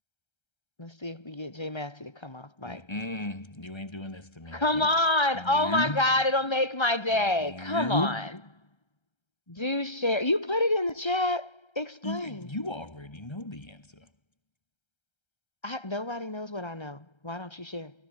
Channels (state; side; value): late; right; 1.3 ms